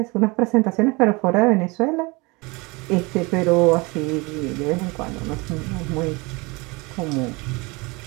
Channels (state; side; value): quieter; left; 26.0 dB